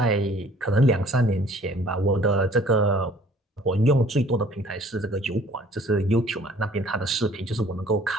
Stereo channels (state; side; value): normal; both; correlation 0.55